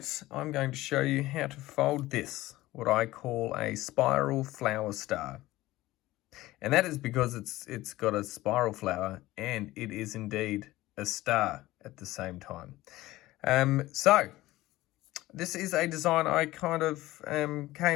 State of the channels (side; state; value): right; quieter; 17.4 dB